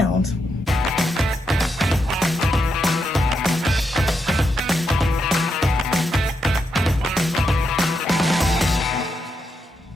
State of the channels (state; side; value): normal; both; correlation 0.82